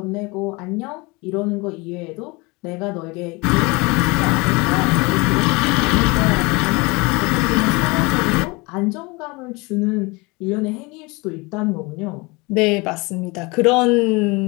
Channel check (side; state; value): right; quieter; 26.0 dB